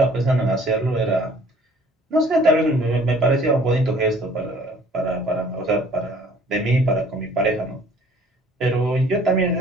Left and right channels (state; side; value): normal; both; correlation 0.54